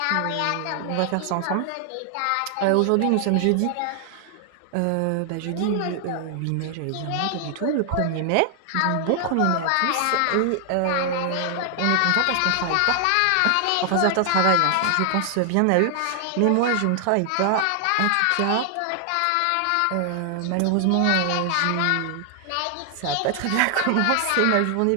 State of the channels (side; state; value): both; different; correlation 0.00